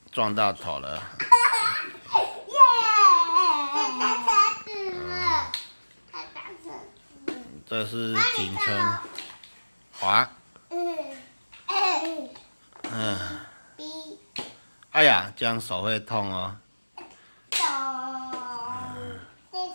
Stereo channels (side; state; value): both; inverted; correlation -1.00